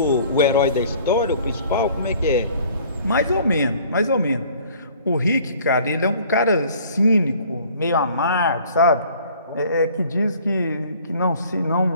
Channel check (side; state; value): both; inverted; correlation -0.53